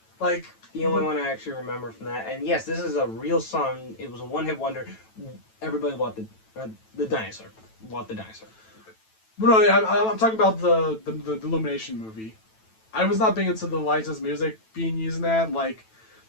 Like, the only one I actually remember from that, and yes, this is a real song. It was a one-hit wonder. Everybody bought the dinosaur. Bought the dinosaur. But no, I'm talking about the Illumination movie. I was not big into the licensed music being used in that. Like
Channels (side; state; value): right; late; 9.1 ms